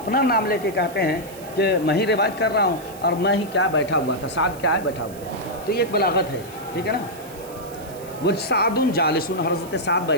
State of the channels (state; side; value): noise; right; hiss, 19 dB below the sound